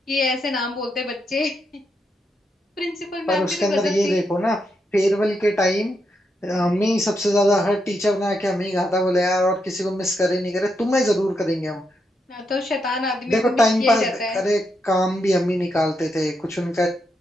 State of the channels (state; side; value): normal; both; correlation 0.82